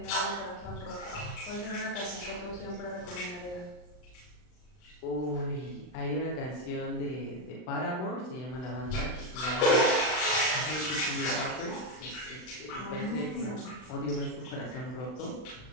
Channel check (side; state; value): right; late; 39 ms